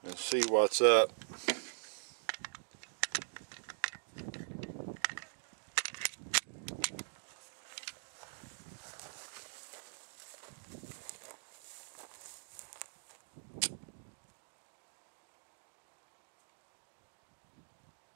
and see what's up.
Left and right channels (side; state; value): left; silent; digital silence